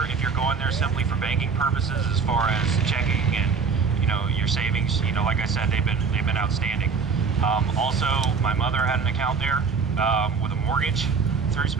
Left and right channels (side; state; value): left; quieter; 5.3 dB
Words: if you're going there simply for banking purposes, as far as checking and your savings, like I said, they've been outstanding. Also, my mother had an account there with a mortgage through